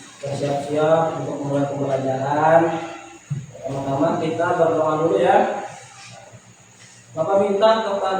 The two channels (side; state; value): both; identical; correlation 1.00